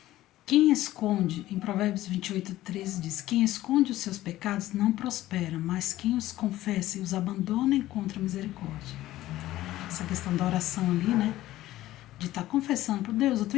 Quem esconde, em Provérbios 28:13 diz, quem esconde os seus pecados não prospera, mas quem os confessa e os abandona encontra misericórdia. Essa questão da oração ali, né? De estar confessando por Deus, eu tô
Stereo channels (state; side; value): quieter; right; 15.3 dB